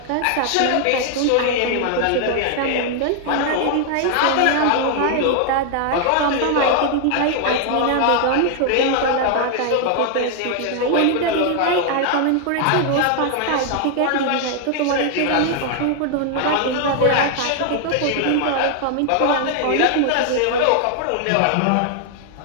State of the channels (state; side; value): different; both; correlation 0.00